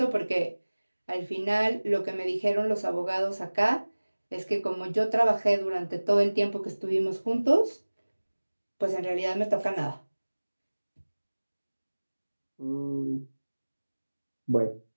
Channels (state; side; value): inverted; both; correlation -1.00